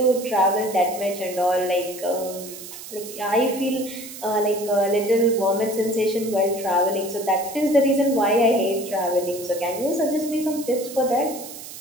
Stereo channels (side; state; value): right; noise; hiss, 13 dB below the sound